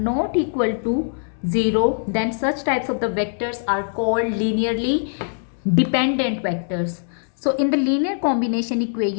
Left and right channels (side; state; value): right; silent; 64 dB below the other